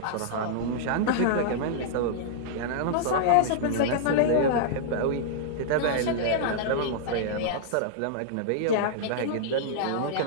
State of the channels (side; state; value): both; different; correlation -0.02